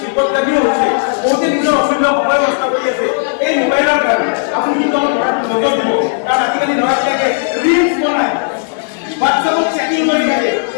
বিপদগামীও হৈছে। বহুতে নিজৰ অমূল্য সময় নষ্ট কৰি আছে এই মোবাইলৰ কাৰণে। আপুনি কিন্তু অলপ নজৰ দিব, কাৰণ আজিকালি ল'ৰা-ছোৱালীয়ে ৰিলছ বনায়, হোৱাটছআপত চেটিং কৰি থাকে,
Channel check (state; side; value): silent; right; digital silence